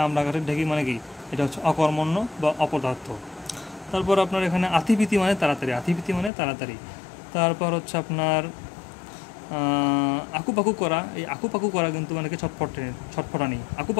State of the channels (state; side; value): drops out; right; at 6.3 s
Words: আমরা কাঠের ঢেকি মানে কি? এটা হচ্ছে অকর্মণ্য বা অপদার্থ। তারপর আপনার এখানে আতিপিতি মানে তাড়াতাড়ি। আতিপিতি মানে তাড়াতাড়ি। তারপর হচ্ছে আপনার আকুপাকু করা। এই আকুপাকু করা কিন্তু মানে কি? ছটফটানি।